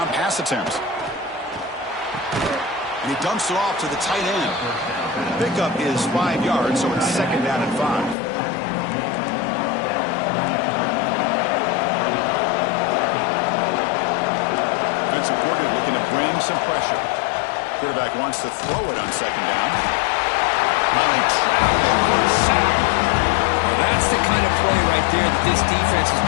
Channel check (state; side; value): drops out; right; at 8.2 s